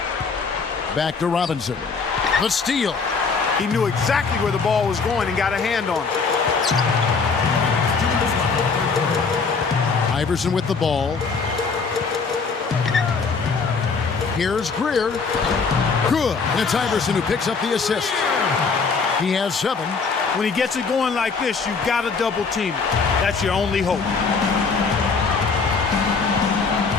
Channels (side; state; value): right; quieter; 4.9 dB